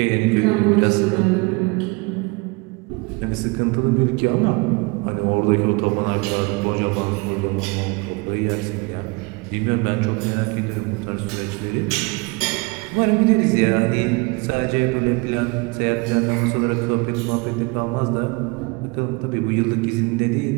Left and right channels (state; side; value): quieter; left; 27.8 dB